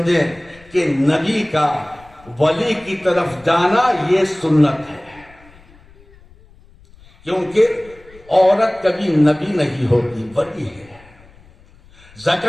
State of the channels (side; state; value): left; noise; rumble, 26 dB below the sound